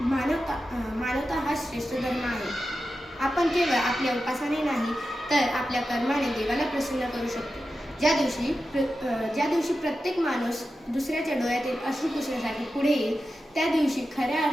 मानवता हाच श्रेष्ठ धर्म आहे. आपण केवळ आपल्या उपासने नाही, तर आपल्या कर्माने देवाला प्रसन्न करू शकतो. ज्या दिवशी प्रत्येक माणूस दुसऱ्याच्या डोळ्यातील अश्रू पुसण्यासाठी पुढे येईल, त्या दिवशी खऱ्या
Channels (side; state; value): both; normal; correlation 0.91